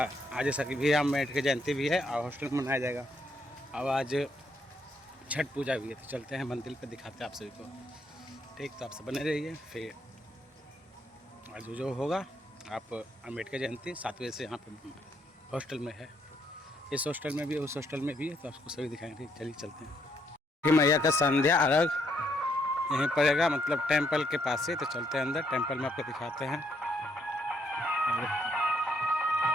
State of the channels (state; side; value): normal; both; correlation 0.73